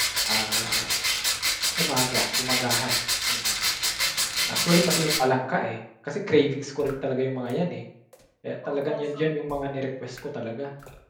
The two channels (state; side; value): identical; both; correlation 1.00